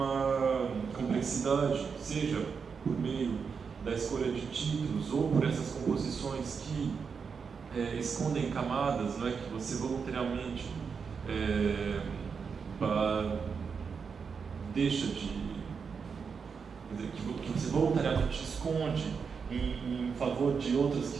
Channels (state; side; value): quieter; left; 5.8 dB